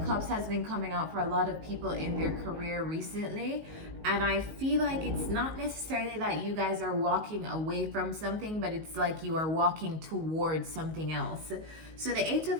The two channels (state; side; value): late; left; 19 ms